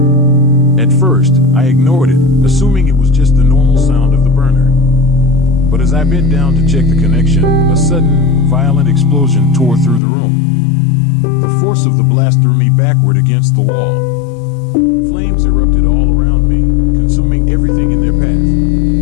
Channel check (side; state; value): right; drops out; at 10.0 s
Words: At first, I ignored it, assuming it was just the normal sound of the burner. But as I bent down to check the connection, a sudden, violent explosion tore through the room. The force of the blast threw me backward against the wall. Flames erupted all around me, consuming everything in their